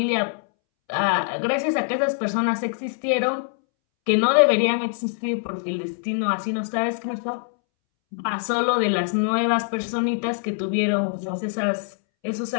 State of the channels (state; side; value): silent; right; 63 dB below the other